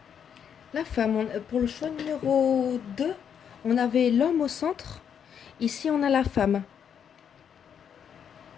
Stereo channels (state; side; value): quieter; right; 8.0 dB